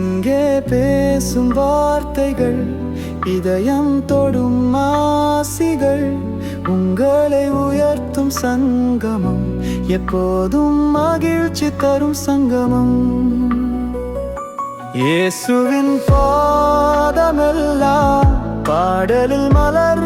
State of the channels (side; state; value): both; identical; correlation 1.00